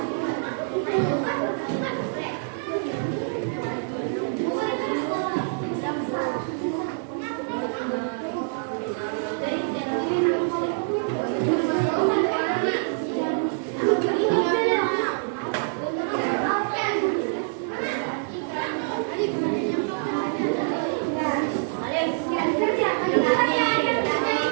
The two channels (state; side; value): silent; left; digital silence